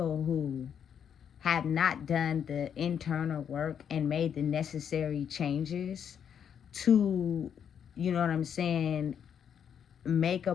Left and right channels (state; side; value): quieter; right; 8.1 dB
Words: who have not done the internal work and made the necessary changes to, you know what I'm saying, make a